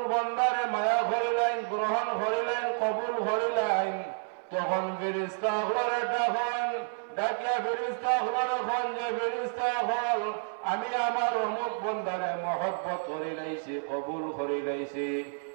বান্দারে মায়া করিলেন, গ্রহণ করিলেন, কবুল করিলেন, তখন ফেরেশতা হলরে ডাকিয়া ফেরেশতা হলরে খন যে ফেরেশতা হল, আমি আমার অমুক বান্দারে মহব্বত করি লাইছি, কবুল করি লাইছি।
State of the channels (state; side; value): silent; left; 58 dB below the other